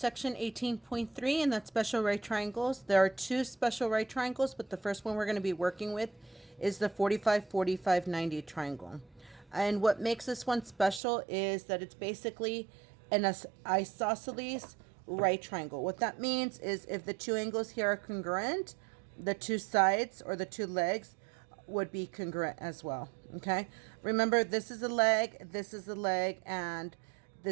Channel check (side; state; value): left; drops out; at 11.0 s